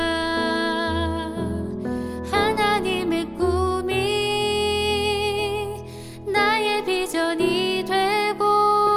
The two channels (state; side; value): identical; both; correlation 1.00